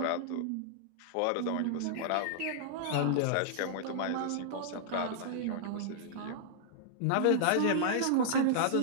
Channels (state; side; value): different; both; correlation -0.01